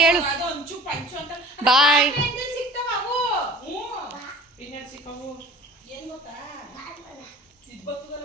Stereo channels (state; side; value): normal; both; correlation 0.43